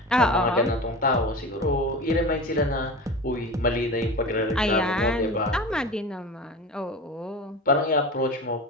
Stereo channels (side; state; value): both; normal; correlation 0.31